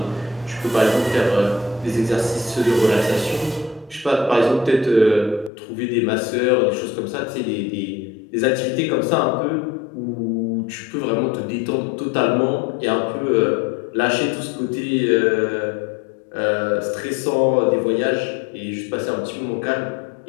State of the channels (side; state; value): right; drops out; at 5.5 s